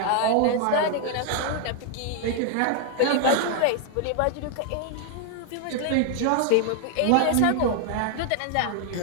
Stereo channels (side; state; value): both; different; correlation 0.00